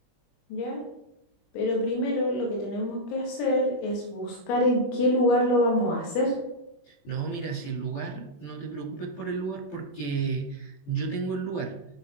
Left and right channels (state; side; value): late; right; 21 ms